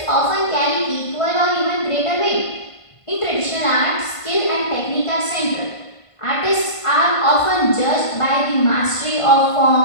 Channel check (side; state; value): right; late; 1.5 ms